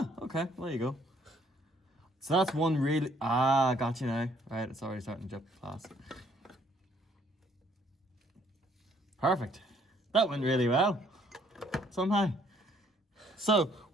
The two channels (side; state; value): both; normal; correlation 0.64